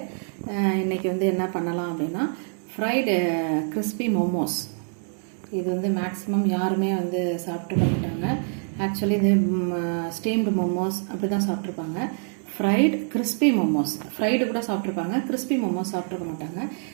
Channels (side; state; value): left; silent; 57 dB below the other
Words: இன்னைக்கு வந்து என்ன பண்ணலாம் அப்படின்னா ஃப்ரைடு கிறிஸ்பி மோமோஸ். இது வந்து மேக்ஸிமம் யாருமே வந்து சாப்பிட்டு மாட்டாங்க. ஆக்சுவலி இது ஸ்டீம்டு மோமோஸ் அப்படி தான் சாப்பிட்ருப்பாங்க. ஃப்ரைடு கிறிஸ்பி மோமோஸ், ஃப்ரைடு கூட சாப்பிட்ருப்பாங்க, கிறிஸ்பி மோமோஸ் சாப்பிட்ருக்க மாட்டாங்க.